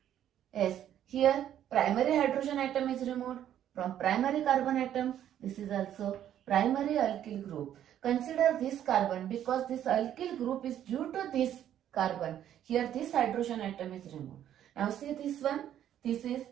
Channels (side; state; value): left; quieter; 10.8 dB